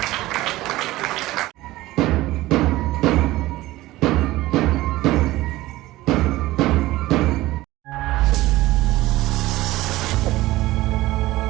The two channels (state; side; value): quieter; left; 17.6 dB